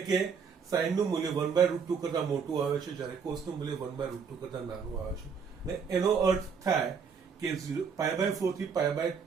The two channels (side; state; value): left; quieter; 6.1 dB